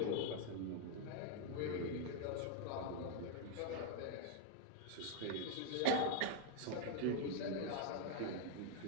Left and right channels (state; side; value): different; both; correlation 0.01